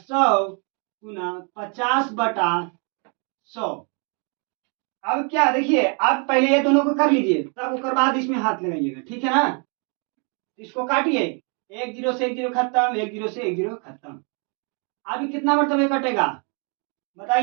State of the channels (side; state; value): left; quieter; 37.4 dB